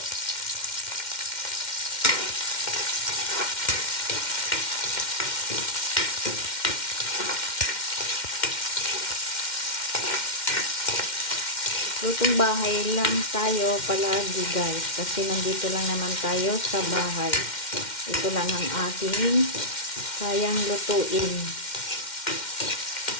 Lutong bahay lang tayo palagi guys, kasi nandito lang naman tayo sa bahay. Ito lang ang ating kayang lutuin.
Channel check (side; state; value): right; late; 2.1 ms